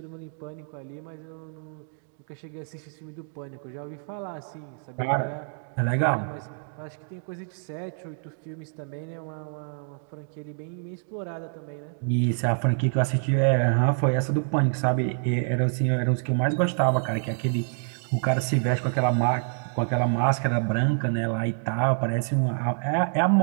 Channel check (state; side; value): silent; left; digital silence